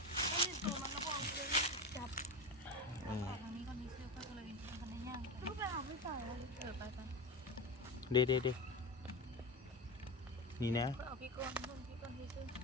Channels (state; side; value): normal; both; correlation 0.21